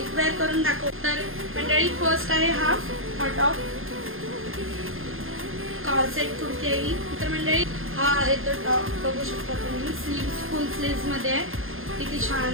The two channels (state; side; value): late; left; 0.60 ms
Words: वेअर करून दाखव. तर मंडळी फर्स्ट आहे हा टॉप, कॉर्सेट कुर्ती आहे ही. तर मंडळी हा आहे तो टॉप, बघू शकता तुम्ही. स्लीव्स फुल स्लीव्स मध्ये आहे, किती